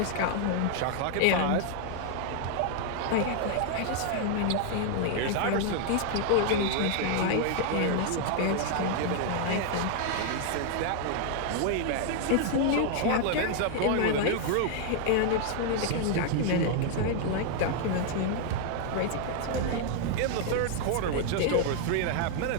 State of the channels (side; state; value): both; different; correlation 0.00